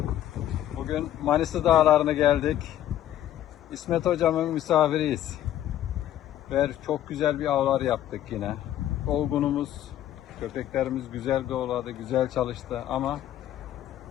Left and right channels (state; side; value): quieter; right; 12.1 dB